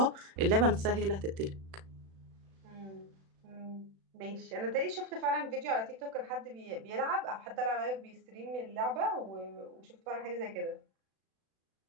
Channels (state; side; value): late; left; 36 ms